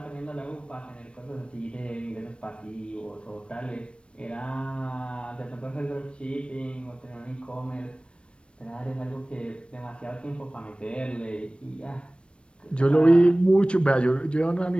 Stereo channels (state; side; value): late; right; 0.058 ms